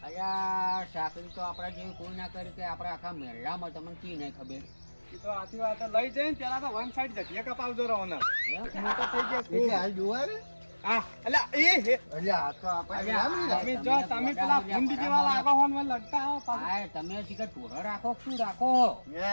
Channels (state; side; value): inverted; both; correlation -1.00